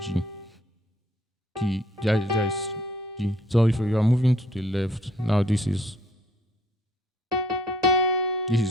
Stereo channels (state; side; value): normal; both; correlation 0.63